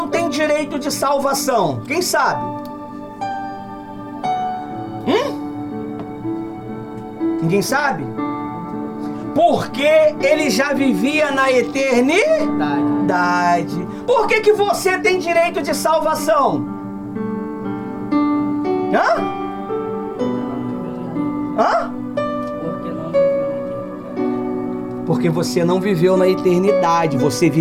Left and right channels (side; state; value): both; identical; correlation 1.00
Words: tem direito de salvação? Quem sabe? Ninguém sabe? Porque ele já vivia na eternidade. Por que você tem direito de salvação? Porque você não viveu na eternidade. Você